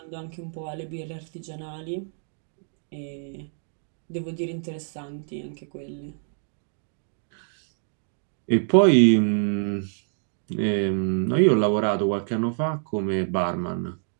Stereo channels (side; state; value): left; silent; digital silence